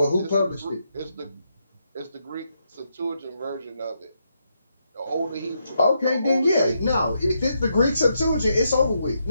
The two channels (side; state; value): both; inverted; correlation -0.80